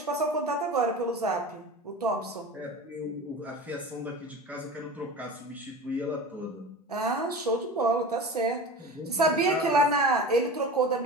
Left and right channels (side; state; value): both; normal; correlation 0.33